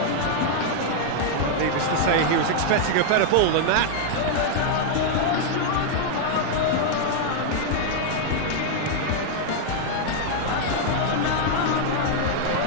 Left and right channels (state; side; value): different; both; correlation 0.00